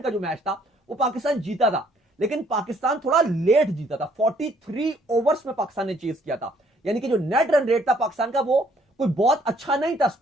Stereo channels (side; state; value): both; normal; correlation 0.64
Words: का जो मैच था वो पाकिस्तान जीता था, लेकिन पाकिस्तान थोड़ा लेट जीता था। 43 ओवर्स में पाकिस्तान ने चेस किया था, यानी कि जो नेट रन रेट था पाकिस्तान का वो कोई बहुत अच्छा नहीं था